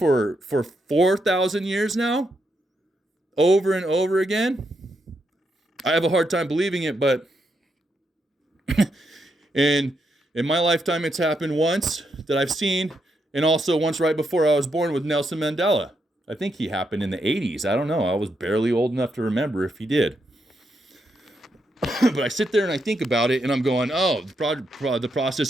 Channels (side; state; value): both; normal; correlation 0.80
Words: 4,000 years now? Over and over again? I have a hard time believing it, but in my lifetime it's happened once that I've seen, and also once right before I was born with Nelson Mandela. I think he happened in the 80s. I don't know. I was barely old enough to remember if he did. But I sit there and I think about it, and I'm going, oh, the